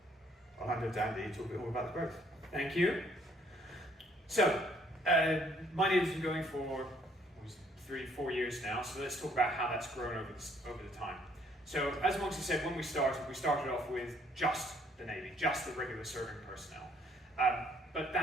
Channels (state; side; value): normal; both; correlation 0.65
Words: I'll hand over to Andy to talk a bit more about the growth. Thank you. So, MyNavy's been going for 3-4 years now, so let's talk about how that's grown over the time. So, as Moxie said, when we started off with just the Navy, just the regular serving personnel. But